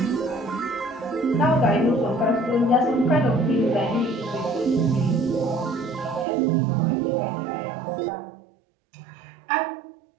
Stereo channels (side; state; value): left; drops out; at 6.2 s